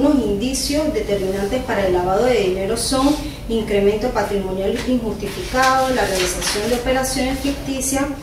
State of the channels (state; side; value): identical; both; correlation 1.00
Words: indicios determinantes para el lavado de dinero son incremento patrimonial injustificado, la realización de operaciones ficticias,